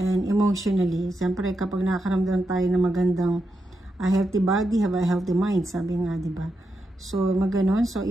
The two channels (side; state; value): both; normal; correlation 0.85